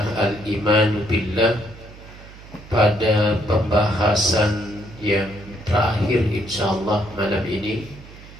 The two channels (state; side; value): noise; right; hum, 19 dB below the sound